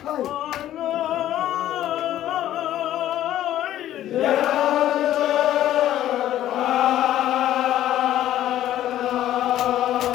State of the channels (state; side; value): quieter; right; 12.7 dB